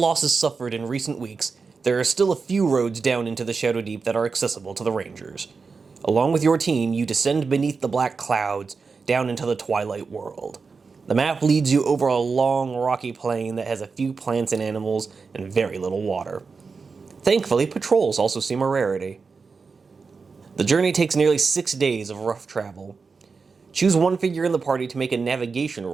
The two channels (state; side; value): quieter; left; 4.8 dB